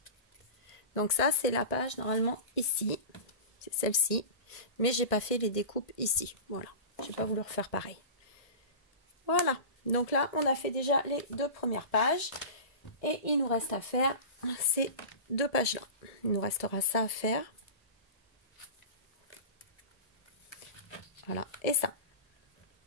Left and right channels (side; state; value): right; late; 1.7 ms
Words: Donc ça, c'est la page normalement ici, c'est celle-ci, mais j'ai pas fait les découpes ici. Voilà, j'ai pas voulu refaire pareil. Voilà, donc là, on a fait déjà les 2 premières pages, et il nous reste à faire ces 2 pages-là. Il nous restera ça à faire. Voilà, et ça.